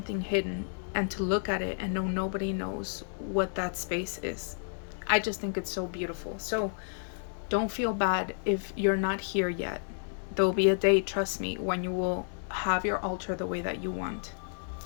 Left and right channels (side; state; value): right; silent; 57 dB below the other